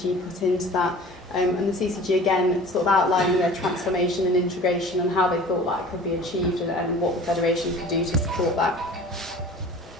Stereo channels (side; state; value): both; normal; correlation 0.43